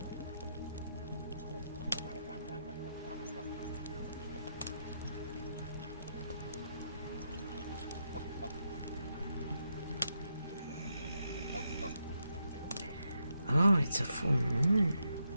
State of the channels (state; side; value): inverted; both; correlation -0.82